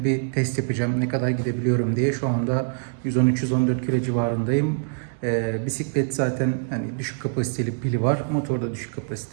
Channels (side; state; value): left; silent; digital silence